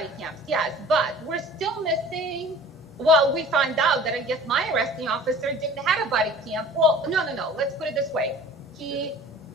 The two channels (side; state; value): both; normal; correlation 0.45